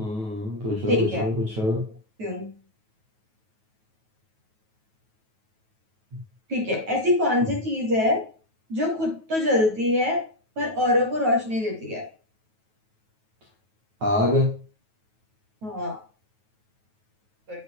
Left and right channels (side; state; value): left; late; 9.3 ms